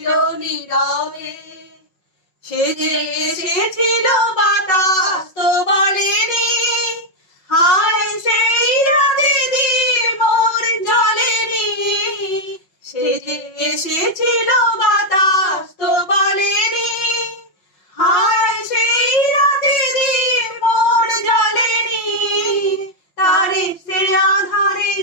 নীরবে, সে যে এসেছিল বাতাস তো বলেনি, হায় সেই রাতে দিন মোর জ্বলেনি। সে যে এসেছিল বাতাস তো বলেনি, হায় সেই রাতে দিন মোর জ্বলেনি। তারে সে আধারে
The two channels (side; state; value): right; late; 5.5 ms